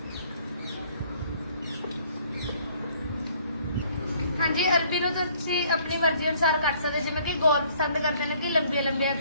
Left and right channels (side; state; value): both; inverted; correlation -0.60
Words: ਹਾਂਜੀ, ਅਰਬੀ ਨੂੰ ਤੁਸੀਂ ਆਪਣੀ ਮਰਜ਼ੀ ਅਨੁਸਾਰ ਕੱਟ ਸਕਦੇ, ਜਿਵੇਂ ਕਿ ਗੋਲ ਪਸੰਦ ਕਰਦੇ ਨੇ ਕਿ ਲੰਬੀਆਂ ਲੰਬੀਆਂ